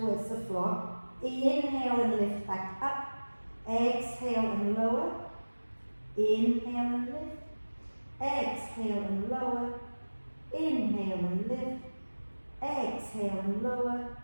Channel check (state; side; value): inverted; both; correlation -1.00